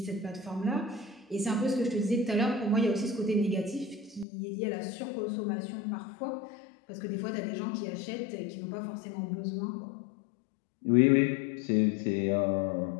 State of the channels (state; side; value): drops out; right; at 4.2 s